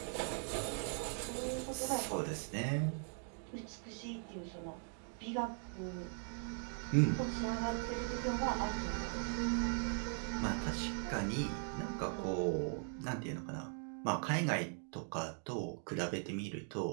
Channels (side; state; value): left; silent; 51 dB below the other